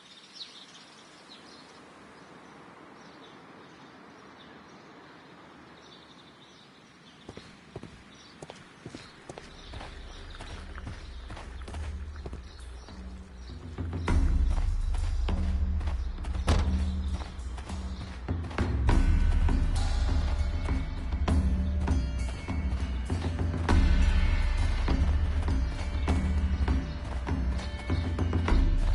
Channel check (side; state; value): both; identical; correlation 1.00